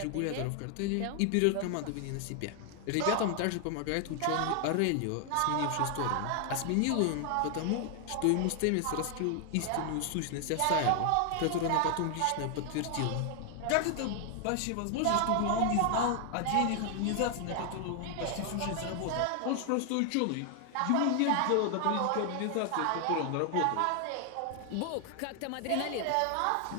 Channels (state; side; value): different; both; correlation 0.00